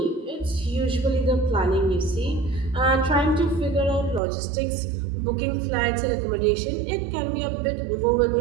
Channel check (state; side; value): drops out; left; at 4.2 s